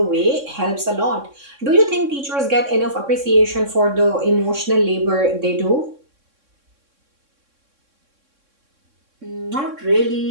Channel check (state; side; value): late; left; 3.6 ms